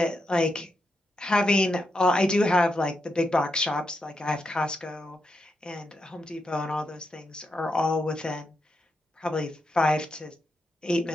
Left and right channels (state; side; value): normal; both; correlation 0.84